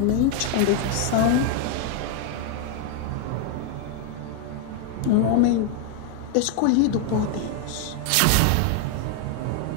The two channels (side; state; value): both; different; correlation 0.01